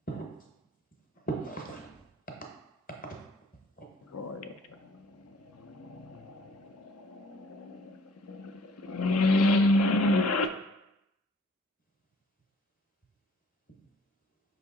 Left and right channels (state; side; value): normal; both; correlation 0.57